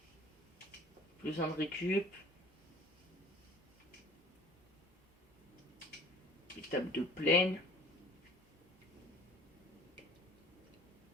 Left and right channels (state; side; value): normal; both; correlation 0.48